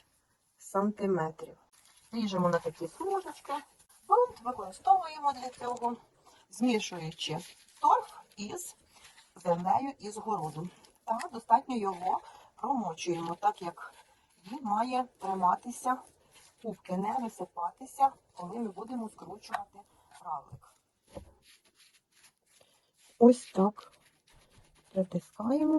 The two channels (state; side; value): identical; both; correlation 1.00